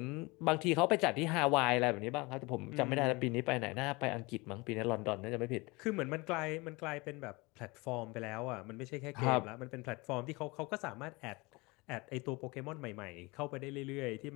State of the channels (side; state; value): right; quieter; 25.1 dB